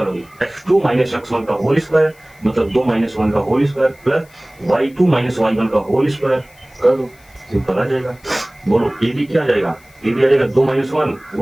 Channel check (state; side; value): noise; left; hiss, 29 dB below the sound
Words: x2 माइनस x1 का होल स्क्वायर मतलब 2 माइनस 1 का whole square plus y2 minus y1 का होल स्क्वायर कर दो, सिंपल आ जाएगा। बोलो ए बी क्या आ जाएगा, ए बी आ जाएगा 2 माइनस